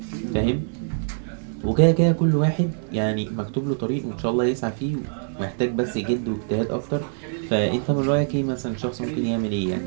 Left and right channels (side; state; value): left; silent; digital silence